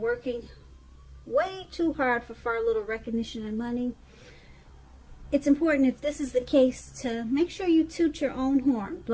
way too hard for far little recognition and money. It's important, if this is the case, to make sure you toot your own horn.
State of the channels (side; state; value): both; identical; correlation 1.00